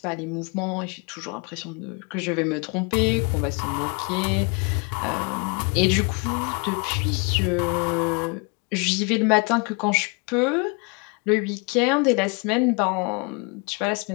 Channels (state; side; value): quieter; right; 31.9 dB